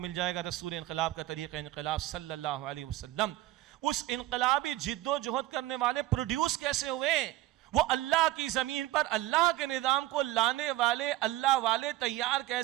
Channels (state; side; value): quieter; left; 15.8 dB